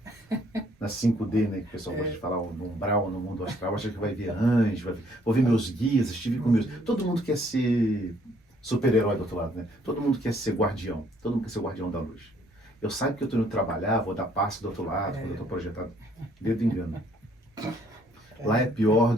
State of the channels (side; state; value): both; normal; correlation 0.64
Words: Na 5D, né? Que o pessoal gosta de falar no umbral, no mundo astral, acha que vai ver anjos, vou ver meus guias, estive com meus... Todo mundo quer ser super-herói do outro lado, né? Todo mundo quer ser guardião. Todo mundo quer ser guardião da luz. Eu saio que eu estou indo trabalhar, vou dar passe do outro lado, quando eu estou projetado. Dedo engano. Lá é pior